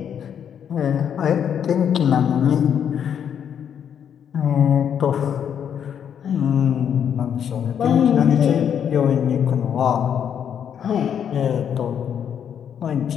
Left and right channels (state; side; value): quieter; right; 8.5 dB